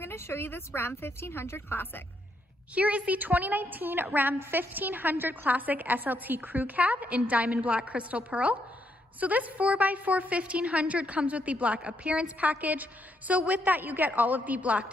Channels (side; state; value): both; normal; correlation 0.76